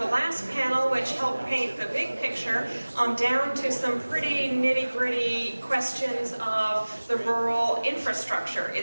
last panel, which helped paint the big picture, down to some pretty nitty-gritty questions of the rural infrastructure,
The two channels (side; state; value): both; inverted; correlation -1.00